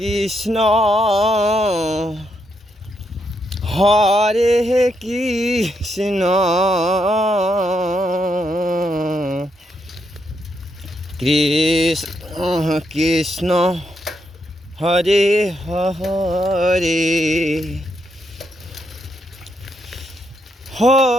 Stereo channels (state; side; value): normal; both; correlation 0.79